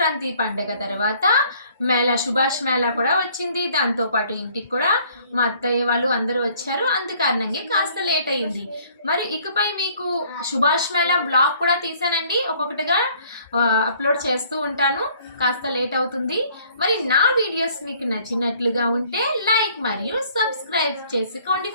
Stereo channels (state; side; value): inverted; both; correlation -0.59